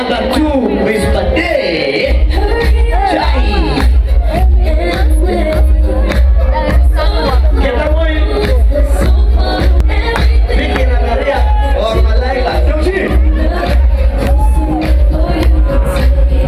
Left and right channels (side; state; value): both; identical; correlation 1.00